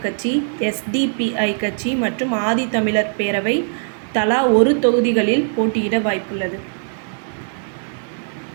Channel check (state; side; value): silent; left; 65 dB below the other